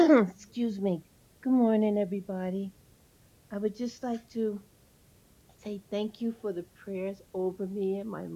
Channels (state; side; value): identical; both; correlation 1.00